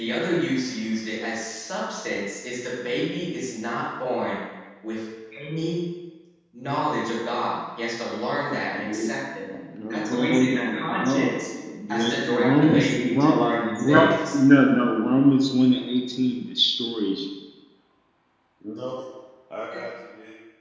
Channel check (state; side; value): identical; both; correlation 1.00